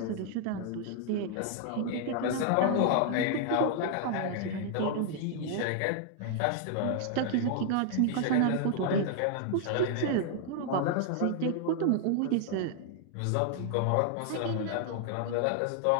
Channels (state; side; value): different; both; correlation 0.00